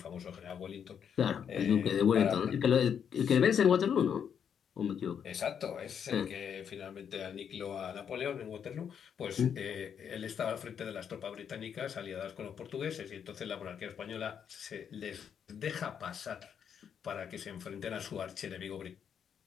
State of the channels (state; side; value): quieter; right; 7.9 dB